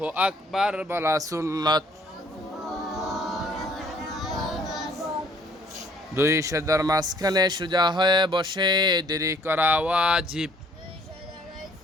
আকবার বলা সুন্নাত। 2 সিজদার মাঝখানে সোজা হয়ে বসে দেরি করা ওয়াজিব।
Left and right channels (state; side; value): normal; both; correlation 0.60